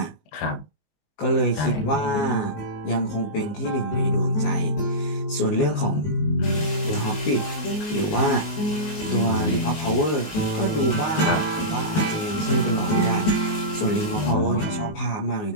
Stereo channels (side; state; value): right; late; 19 ms